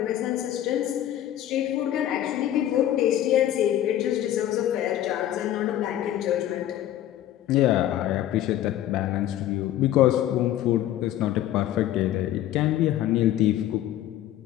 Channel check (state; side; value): quieter; right; 12.5 dB